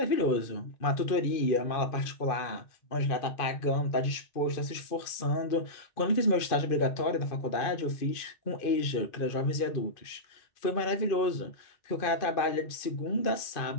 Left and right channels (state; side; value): late; right; 2.5 ms